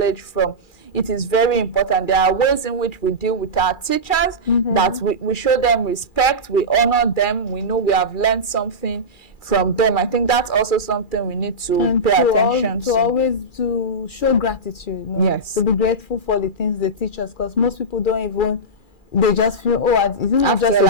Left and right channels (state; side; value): late; right; 2.4 ms